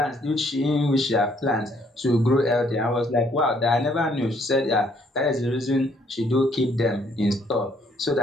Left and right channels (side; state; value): both; normal; correlation 0.66